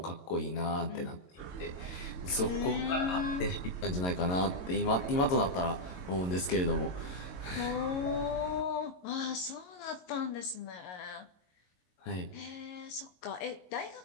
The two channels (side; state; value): right; late; 22 ms